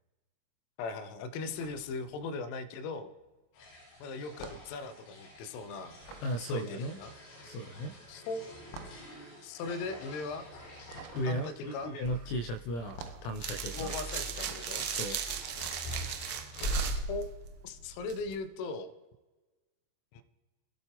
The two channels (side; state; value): right; late; 25 ms